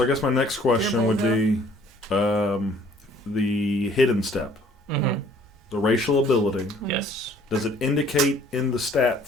I guess my next question would be the hidden step, the racial ability. Yes. Does it indicate in the stat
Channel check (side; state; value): both; normal; correlation 0.57